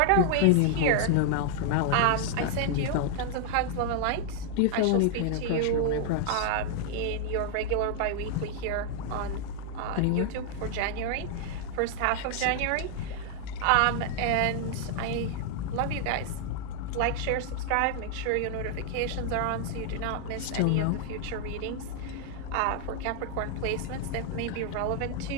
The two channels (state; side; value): different; both; correlation 0.00